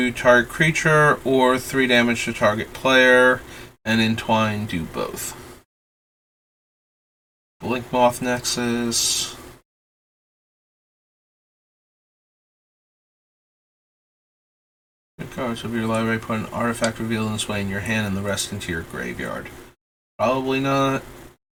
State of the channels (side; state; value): both; identical; correlation 1.00